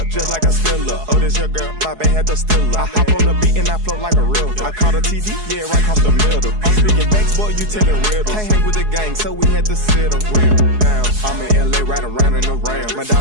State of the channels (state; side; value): late; left; 4.7 ms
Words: just like a Steeler. Oh, this your girl, my band had the Steeler. I hop on the beat and I float like a river. I caught a TD, yeah, right across the middle. I'm speaking banks, boy, you telling riddles. Can't hang with the gang, so we had to sit them down. I'm in LA, right around in the round. My